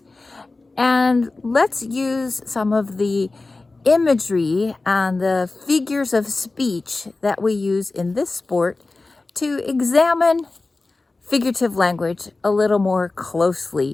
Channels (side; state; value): right; quieter; 3.4 dB